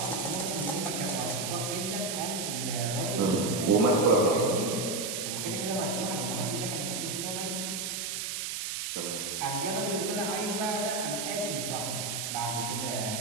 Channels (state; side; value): noise; right; hiss, 3 dB below the sound